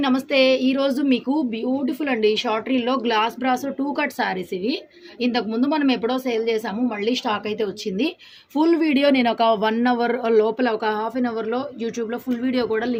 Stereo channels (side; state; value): both; identical; correlation 1.00